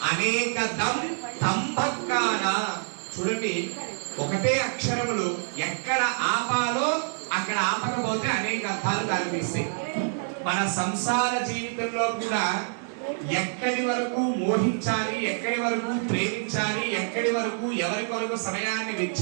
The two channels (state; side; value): silent; left; digital silence